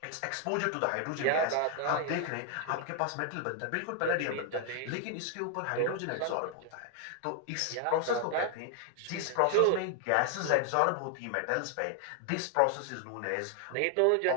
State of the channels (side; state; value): both; different; correlation 0.00